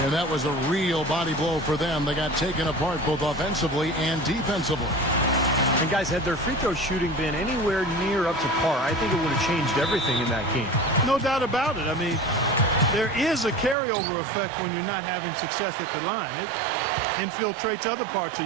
And that was a real body blow for them. They got taken apart both offensively and defensively. And guys, had their free throw shooting been anywhere near up to par, I think it would have changed everything in that game. No doubt about it. I mean, there is a carryover effect when you're not having success at the line. It infiltrates other parts of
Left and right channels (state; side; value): drops out; left; at 13.8 s